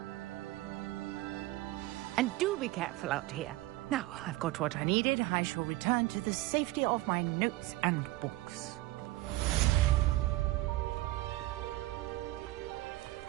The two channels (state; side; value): quieter; left; 18.4 dB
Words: And do be careful out here. Now, I've got what I needed. I shall return to the safety of my notes and books.